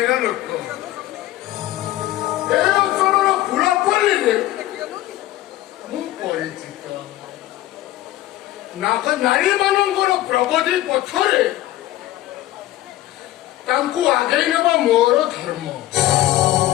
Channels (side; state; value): right; quieter; 15.3 dB